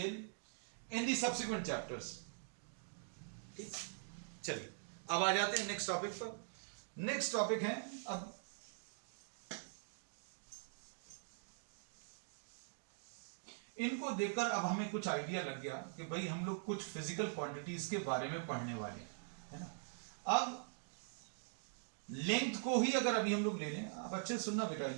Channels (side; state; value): left; silent; digital silence